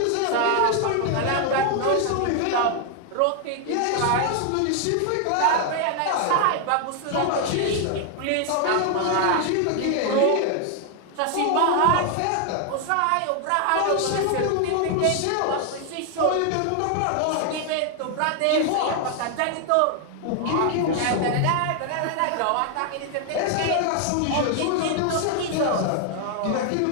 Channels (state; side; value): different; both; correlation 0.00